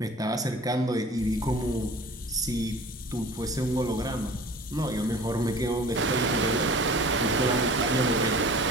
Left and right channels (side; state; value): both; normal; correlation 0.43